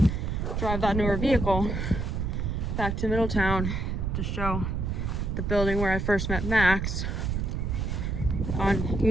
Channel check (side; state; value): right; noise; rumble, 1 dB below the sound